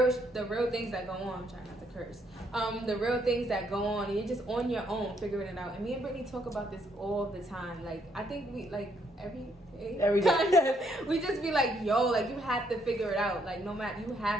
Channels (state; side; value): normal; both; correlation 0.72